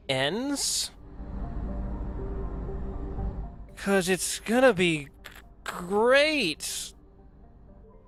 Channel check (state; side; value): identical; both; correlation 1.00